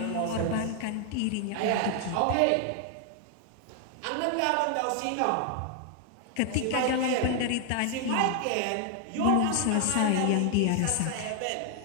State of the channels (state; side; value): different; both; correlation 0.00